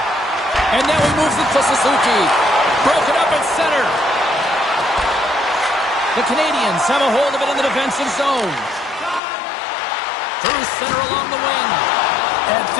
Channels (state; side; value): drops out; right; at 9.2 s